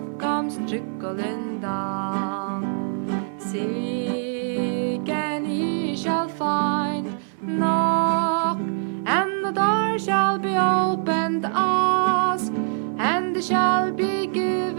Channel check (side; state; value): left; silent; 61 dB below the other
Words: comes trickling down. Seek and ye shall find, knock and the door shall be opened, ask and it shall be